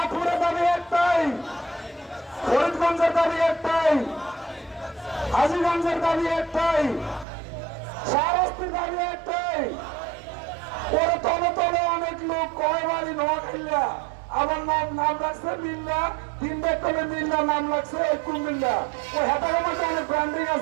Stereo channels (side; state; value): left; drops out; at 7.2 s